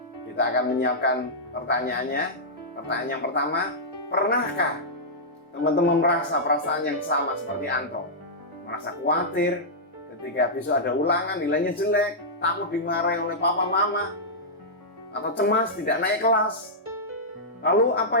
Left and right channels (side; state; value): both; normal; correlation -0.11